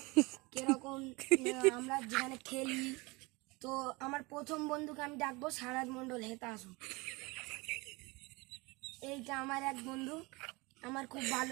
কিরকম আমরা যেখানে খেলি। তো আমার প্রথম বন্ধুকে আমি ডাকবো সারাজ মণ্ডল, হেতা আসুন। এইটা আমার এক বন্ধু, আমার খুব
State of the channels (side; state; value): left; quieter; 25.0 dB